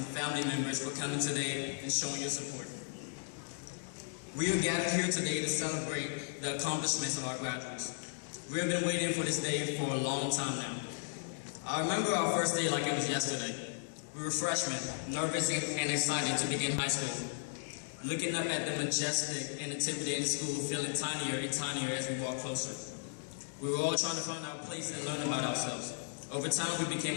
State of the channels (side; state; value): right; silent; digital silence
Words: family members for coming today and showing your support. We are gathered here today to celebrate the accomplishments of our graduates. We have been waiting for this day for a long time now. I remember our first day like it was yesterday. We were freshmen, nervous and excited to begin high school. Looking up at the majestic and intimidating school, feeling tinier and tinier as we walked closer. We were all trying to find our place and learn about ourselves. Over time, we